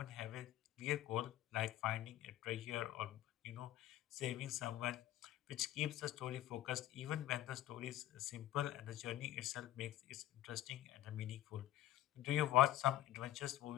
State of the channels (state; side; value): quieter; right; 13.9 dB